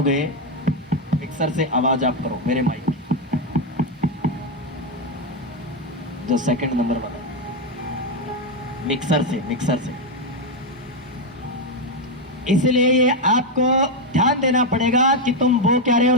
मिक्सर से आवाज आप करो मेरे माइक की, जो सेकंड नंबर बना, मिक्सर से, मिक्सर से। इसलिए ये आपको ध्यान देना पड़ेगा कि तुम वो क्या रहे हो,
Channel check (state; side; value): normal; both; correlation 0.05